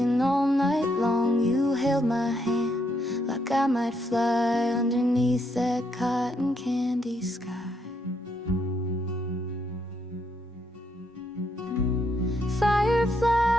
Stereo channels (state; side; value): normal; both; correlation 0.75